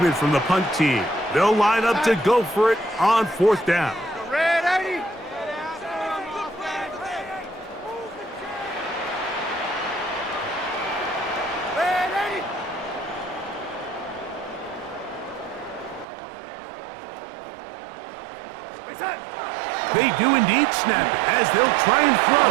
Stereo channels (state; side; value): drops out; left; at 16.1 s